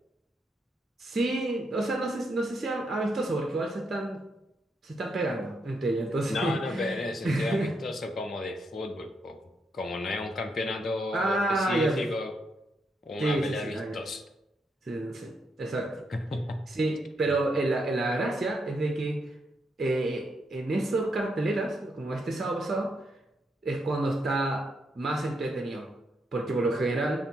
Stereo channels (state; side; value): normal; both; correlation 0.79